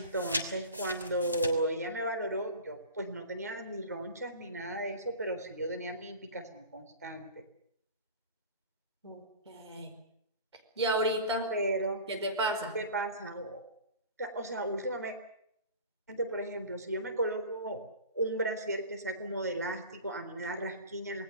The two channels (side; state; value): both; inverted; correlation -0.36